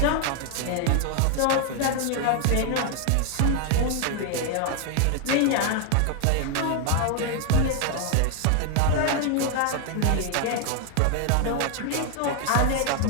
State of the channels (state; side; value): different; both; correlation 0.00